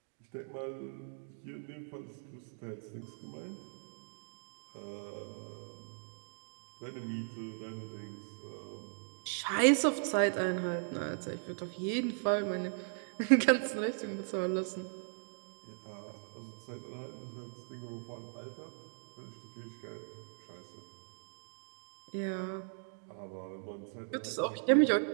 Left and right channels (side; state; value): left; silent; digital silence